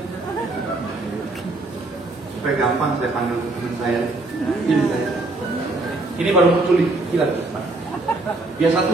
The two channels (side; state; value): left; quieter; 3.0 dB